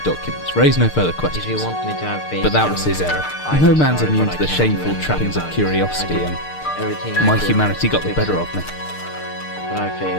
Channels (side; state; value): right; late; 6.6 ms